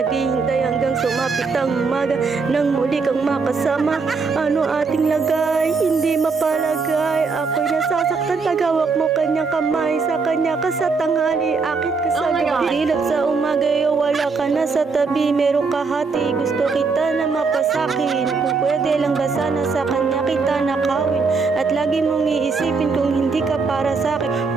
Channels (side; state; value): left; quieter; 4.7 dB